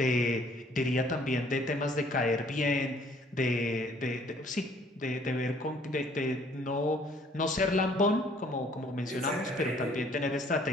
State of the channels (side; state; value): both; normal; correlation 0.60